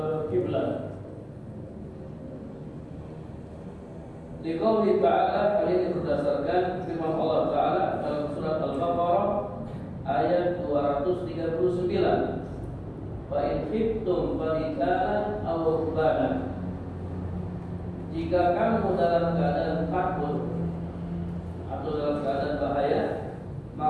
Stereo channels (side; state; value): both; identical; correlation 1.00